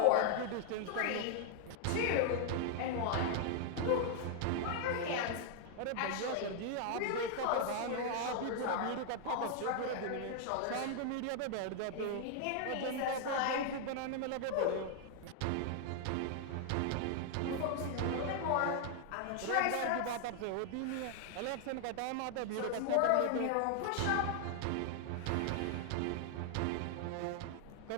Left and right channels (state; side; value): different; both; correlation 0.00